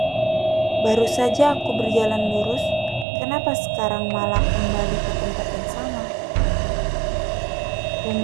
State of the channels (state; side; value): drops out; left; at 3.1 s